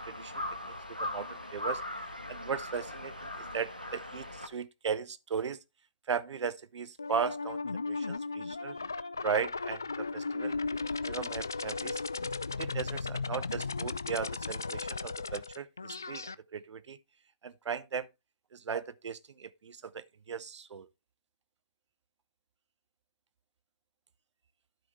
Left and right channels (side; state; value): both; inverted; correlation -0.40